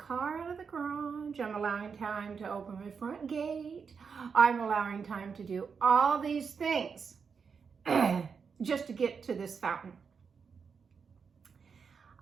out of the garage. I'm allowing time to open my front gate. I'm allowing time to do all these things just to get to this fountain.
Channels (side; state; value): left; quieter; 5.9 dB